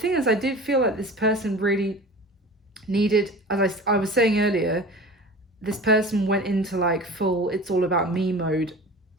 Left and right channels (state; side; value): normal; both; correlation 0.38